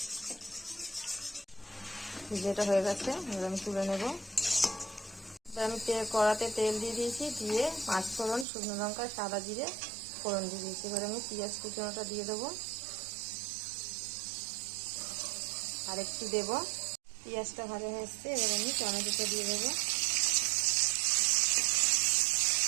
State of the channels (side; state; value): left; drops out; at 8.5 s